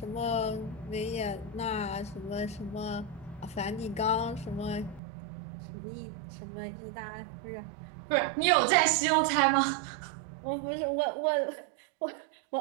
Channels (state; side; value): drops out; left; at 5.0 s